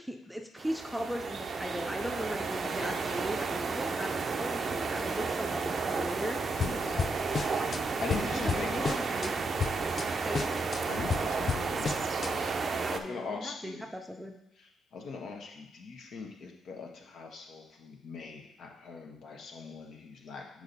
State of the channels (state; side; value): normal; both; correlation 0.81